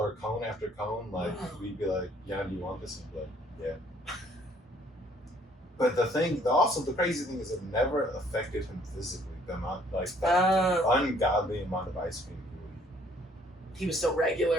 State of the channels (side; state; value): both; normal; correlation 0.62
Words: cone after cone, like Wow. we'd be like, "Yeah, do you want this?" And he'd be like, "Yeah." But the crazy thing is, it never affected him physically. The amount, like, the ungodly amount of ice cream he would eat. He was still